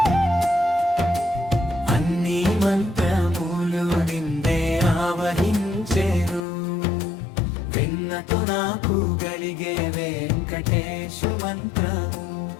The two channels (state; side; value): drops out; right; at 6.5 s